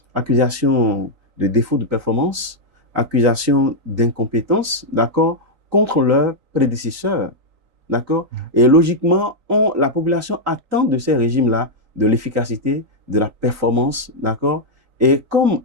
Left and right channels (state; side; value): late; left; 3.9 ms